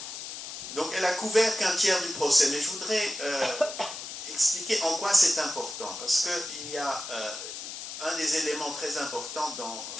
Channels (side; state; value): left; noise; hiss, 8 dB below the sound